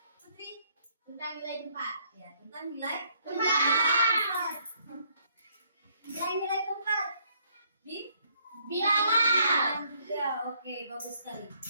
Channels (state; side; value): inverted; both; correlation -0.68